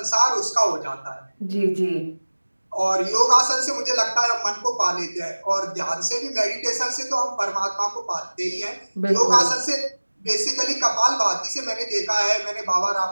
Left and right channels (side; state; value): both; inverted; correlation -1.00